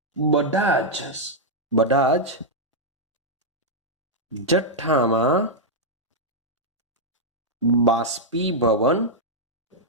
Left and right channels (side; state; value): both; normal; correlation -0.05